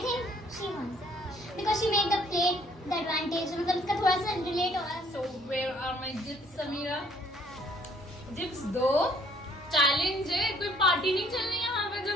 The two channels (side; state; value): both; normal; correlation 0.61